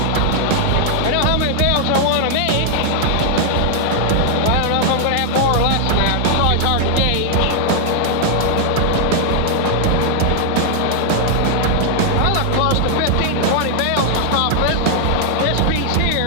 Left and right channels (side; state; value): both; different; correlation 0.00